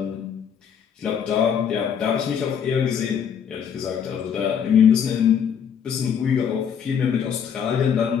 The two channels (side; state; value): right; quieter; 7.8 dB